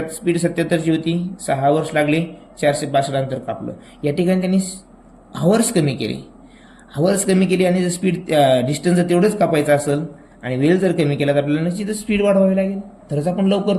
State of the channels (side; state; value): both; identical; correlation 1.00